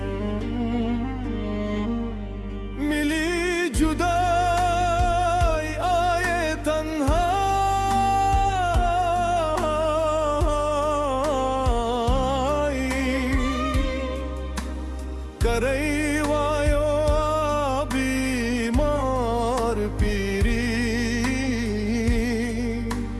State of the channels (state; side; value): identical; both; correlation 1.00